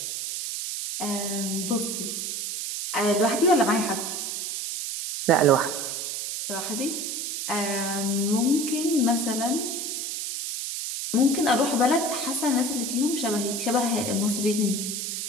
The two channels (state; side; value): noise; right; hiss, 4 dB below the sound